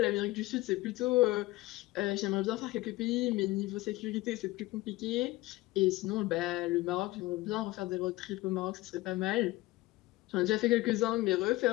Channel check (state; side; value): quieter; right; 19.0 dB